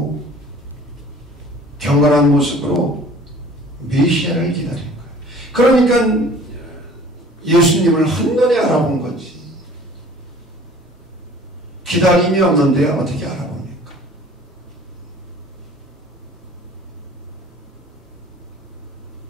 경건한 모습으로 메시아를 기다린 거예요. 그러니까 예수님을 한눈에 알아본 거지. 기다림이 없는데 어떻게 알아봅니까?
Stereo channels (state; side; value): normal; both; correlation 0.49